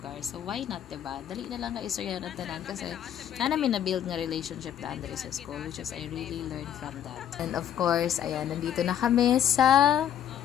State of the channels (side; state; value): right; quieter; 10.0 dB